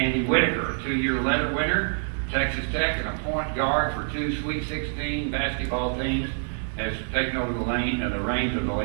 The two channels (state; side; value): silent; left; digital silence